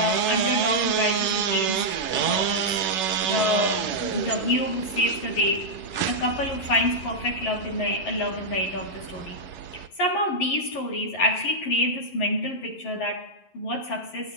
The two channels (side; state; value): right; late; 11 ms